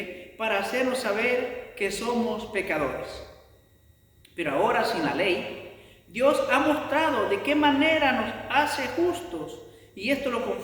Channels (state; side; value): identical; both; correlation 1.00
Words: para hacernos saber que somos pecadores. Pero ahora, sin la ley, Dios ha mostrado de qué manera nos hace justos, y esto lo